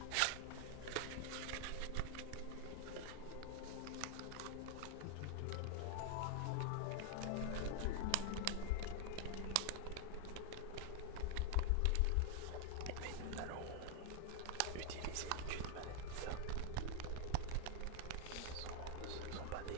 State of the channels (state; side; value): different; both; correlation 0.01